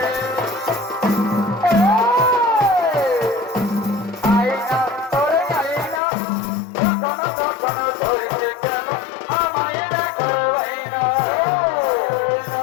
আইনা তোরে আইনা কখনো কখনো ধরছে কেন আমায় দেখার বাইনা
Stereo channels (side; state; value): right; drops out; at 6.0 s